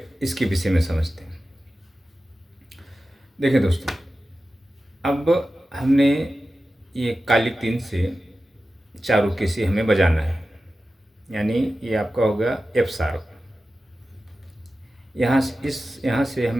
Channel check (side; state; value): both; normal; correlation 0.94